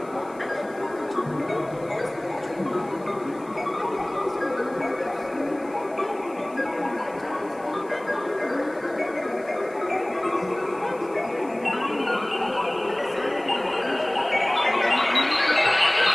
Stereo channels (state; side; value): noise; left; hiss, 28 dB below the sound